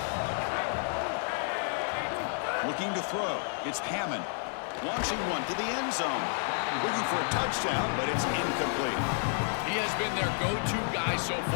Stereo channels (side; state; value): right; silent; 57 dB below the other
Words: Looking to throw. It's Hammond. Launching one to the end zone. Looking for a touchdown, but it's incomplete. He has been their go-to guy so